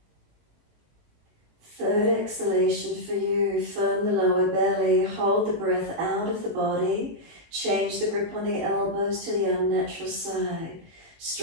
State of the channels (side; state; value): left; late; 18 ms